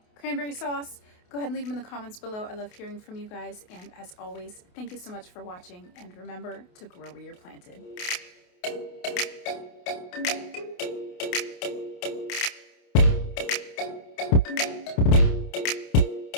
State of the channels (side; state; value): right; late; 28 ms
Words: sauce, go ahead and leave them in the comments below. I love hearing from you guys. And as always, thank you so much for watching. And remember to grow where you're planted.